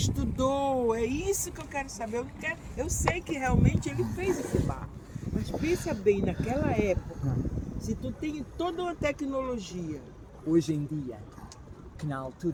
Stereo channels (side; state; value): both; identical; correlation 1.00